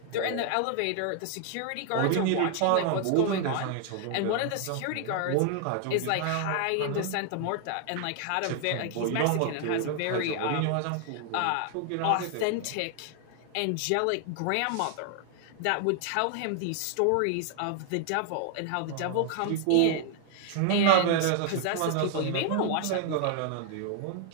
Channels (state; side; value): different; both; correlation 0.00